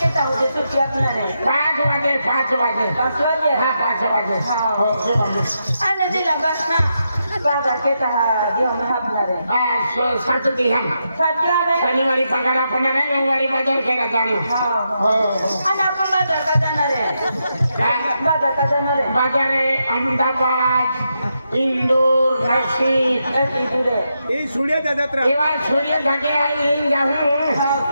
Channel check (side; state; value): both; inverted; correlation -0.84